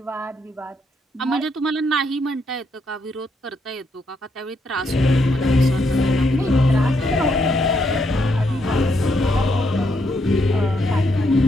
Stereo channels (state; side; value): normal; both; correlation 0.76